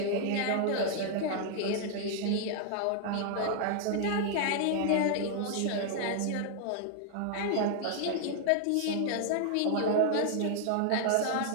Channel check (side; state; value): both; different; correlation 0.00